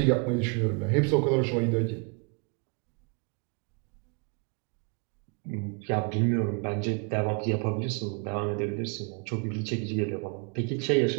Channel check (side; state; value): left; quieter; 34.1 dB